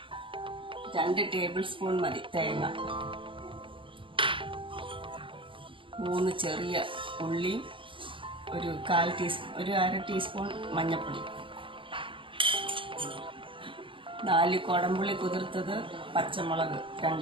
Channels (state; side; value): late; left; 0.25 ms